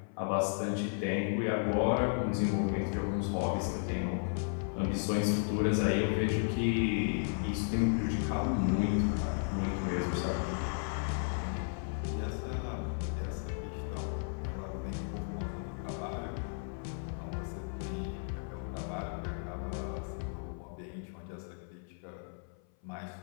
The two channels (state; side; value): silent; right; 55 dB below the other